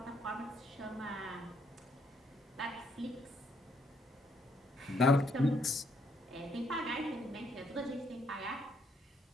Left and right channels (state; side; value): normal; both; correlation 0.71